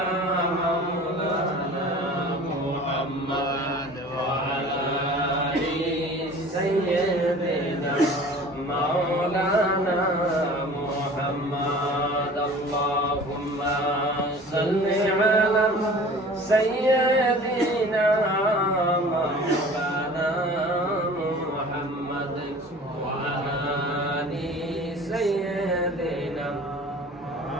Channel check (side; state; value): both; normal; correlation 0.43